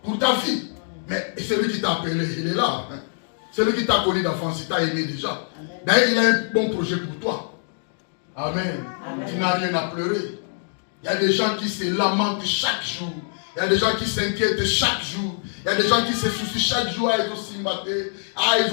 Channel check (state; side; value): silent; right; digital silence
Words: Pour ta vie. Mais celui qui t'a appelé, il est là. Hein. Celui qui t'a connu d'enfance, il t'a aimé déjà. D'ailleurs, il a un bon projet pour toi. Amen. Amen. Tu n'as rien à pleurer. Il y a des gens qui se lamentent chaque jour. Il y a des gens qui s'inquiètent chaque jour. Il y a des gens qui se soucient chaque jour. Ah, ils ont simbaté. Ah,